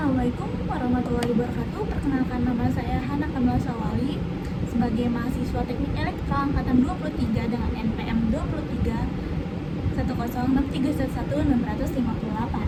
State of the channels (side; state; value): both; identical; correlation 1.00